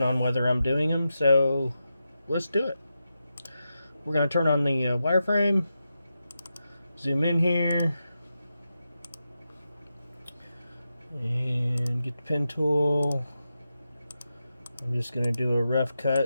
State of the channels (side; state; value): both; inverted; correlation -0.89